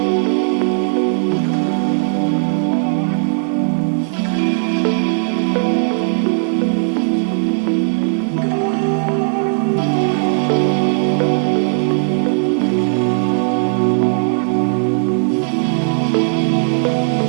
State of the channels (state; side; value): silent; left; 65 dB below the other